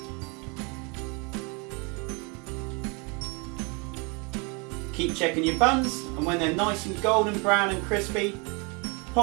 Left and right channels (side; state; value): left; quieter; 31.1 dB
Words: Keep checking your buns, and when they're nice and golden brown and crispy,